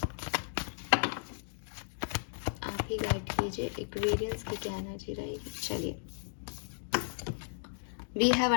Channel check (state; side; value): silent; right; digital silence